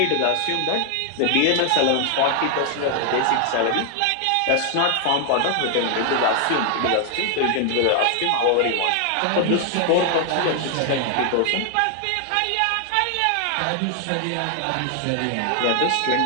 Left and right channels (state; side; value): different; both; correlation 0.00